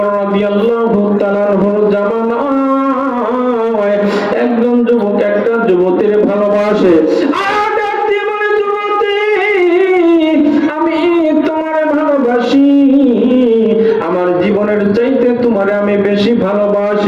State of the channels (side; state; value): both; identical; correlation 1.00